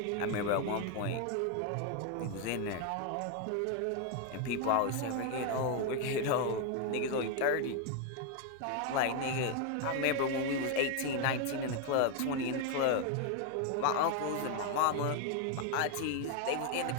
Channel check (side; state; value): both; different; correlation 0.01